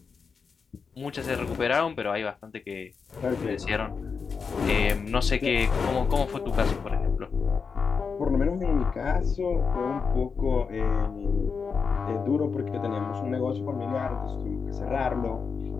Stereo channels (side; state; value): right; quieter; 5.5 dB